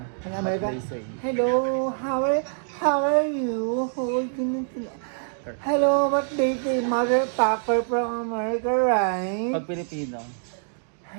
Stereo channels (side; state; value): left; silent; digital silence